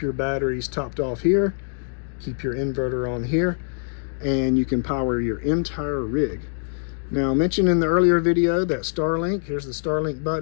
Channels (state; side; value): silent; right; digital silence